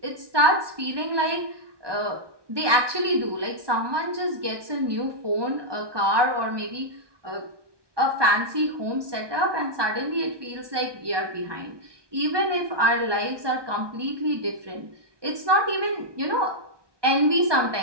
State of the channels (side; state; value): left; late; 1.2 ms